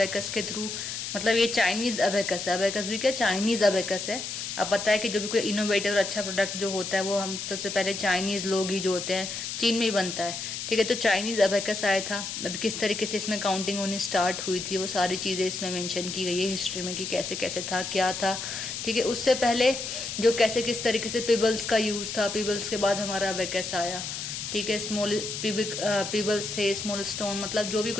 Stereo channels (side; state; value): left; noise; hiss, 5 dB below the sound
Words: के थ्रू मतलब ये चाइनीज़ अबेकस है, अबेकस भी क्या चाइनीज़ अबेकस है। अब पता है कि जो भी कोई इनोवेटिव और अच्छा प्रोडक्ट जो होता है वो हम सबसे पहले चाइनीज़ लोग ही जो होते हैं, चीन में ही बनता है। ठीक है, तो चाइनीज़ अबेकस आया था। अब किस तरीके से इसमें काउंटिंग होनी स्टार्ट हुई थी वो सारी चीज़ें इसमें मेंशन की गई है हिस्ट्री में कि कैसे कैसे था, क्या था। ठीक है, उससे पहले जो कैसे किस तरीके से पीबल्स का यूज़ था, पीबल्स के बाद हमारा अबेकस आया। ठीक है, स्मॉल पीबल्स थे, स्मॉल स्टोन मतलब जो भी